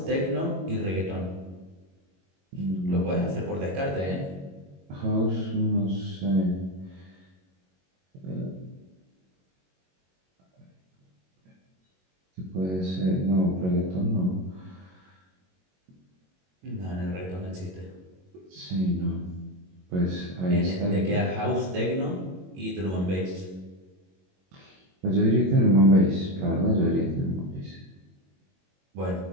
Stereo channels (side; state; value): left; late; 22 ms